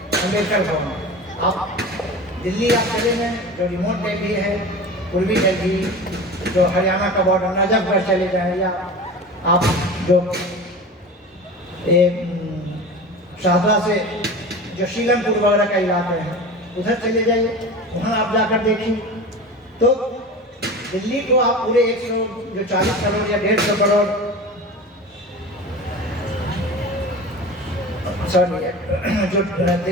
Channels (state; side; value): normal; both; correlation 0.33